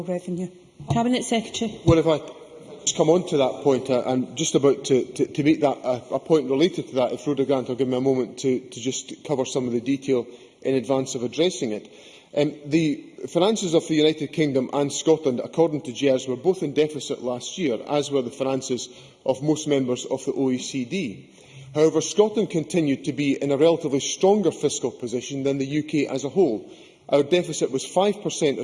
revenue? Cabinet Secretary. Well, if I just come on to that point, I'm just about to make that a point related to that. If Rhoda Grant will give me a moment to just cover some of the detail in advance of addressing it. The finances of the United Kingdom and Scotland, according to GERS, were both in deficit last year, as were the finances of most members of the OECD. However, Scotland continued to be in a relatively stronger fiscal position than the UK as a whole. Our deficit was 5%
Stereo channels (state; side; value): identical; both; correlation 1.00